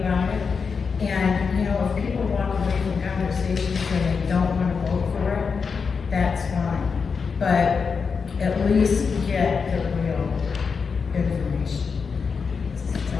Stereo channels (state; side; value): quieter; right; 5.5 dB